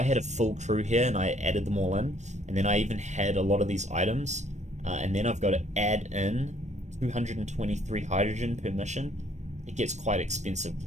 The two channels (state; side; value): late; left; 0.34 ms